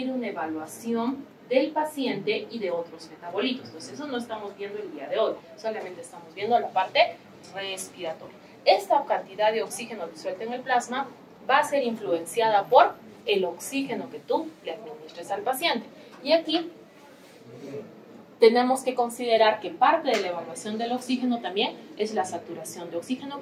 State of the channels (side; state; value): both; identical; correlation 1.00